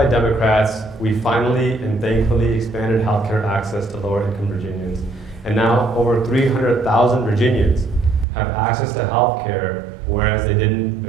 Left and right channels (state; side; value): drops out; left; at 8.2 s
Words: Democrats, we finally and thankfully expanded healthcare access to lower-income Virginians. And now over 300,000 Virginians have access to healthcare, whereas they didn't